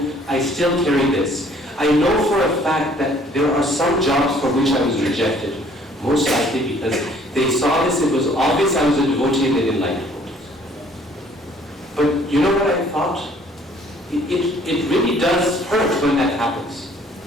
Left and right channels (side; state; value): both; normal; correlation 0.58